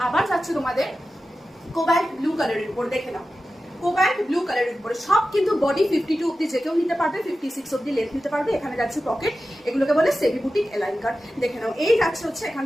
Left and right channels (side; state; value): both; normal; correlation 0.93